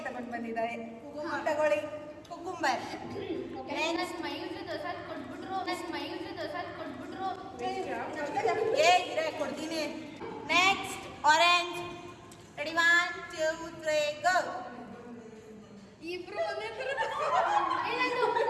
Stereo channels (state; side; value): identical; both; correlation 1.00